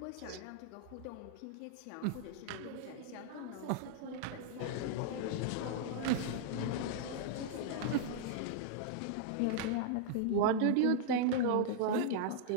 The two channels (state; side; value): different; both; correlation -0.01